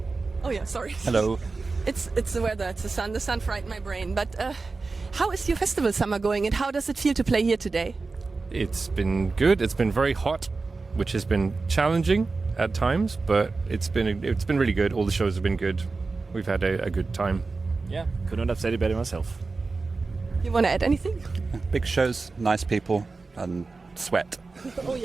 Oh yeah, sorry. Hello. It's the weather, it's the sun. The sun frightened my brain. But how is your festival summer going, and how does it feel to play here today? It's been good. It's been very hot, which has been challenging at times, but it's been really good. All the shows have been good. We've had a good time. Yeah, couldn't have said it better myself. You want to add anything? Big shows, nice people, and sweat. Oh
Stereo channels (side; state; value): left; quieter; 3.9 dB